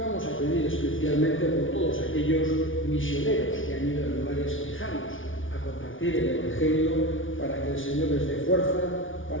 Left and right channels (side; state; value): right; late; 0.57 ms